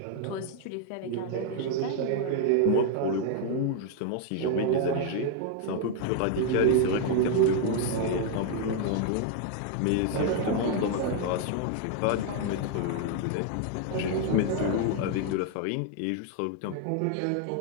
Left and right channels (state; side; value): different; both; correlation 0.00